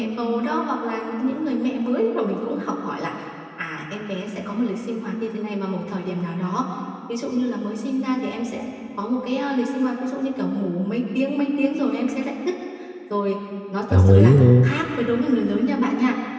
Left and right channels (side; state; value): both; identical; correlation 1.00